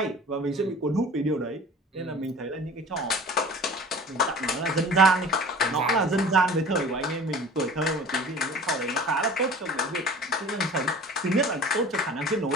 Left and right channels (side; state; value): both; normal; correlation 0.42